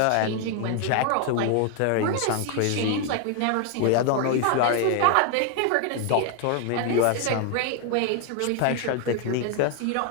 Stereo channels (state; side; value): different; both; correlation 0.00